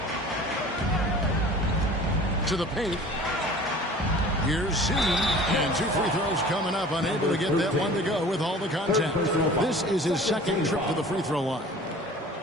To the paint. Here's Z. And 2 free throws coming up. Unable to get that one to go with all the contact. This is his second trip to the free throw line.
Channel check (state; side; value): normal; both; correlation 0.44